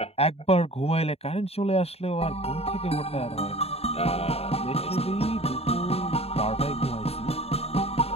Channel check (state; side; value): late; right; 0.29 ms